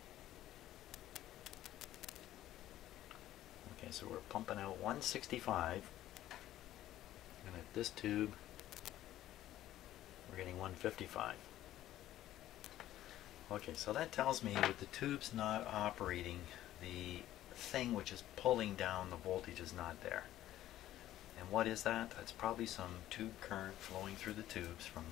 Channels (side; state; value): right; quieter; 13.5 dB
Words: Okay, so we're pumping out 165, and at this tube, we're getting 155. Okay, so that tells me with the tubes not operating, the thing which is pulling down the voltage is not there. And what is that? That's probably some tube current flowing through the tubes from